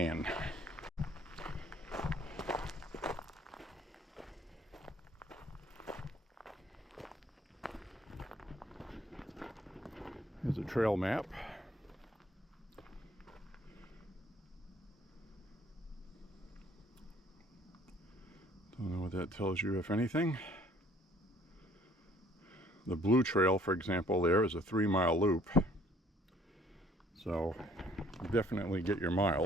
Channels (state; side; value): normal; both; correlation 0.59